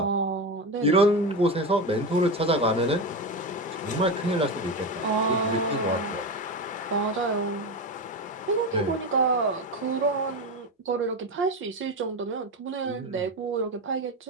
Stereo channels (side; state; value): both; normal; correlation 0.18